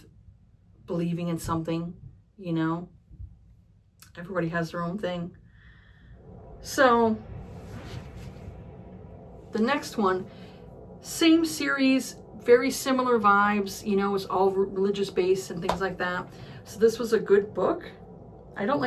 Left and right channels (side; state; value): both; identical; correlation 1.00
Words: believing in something, you know? Everybody has their own thing. So the next one, same series, very similar vibes, you know, it's all religious based and things like that. So this was a good book. I don't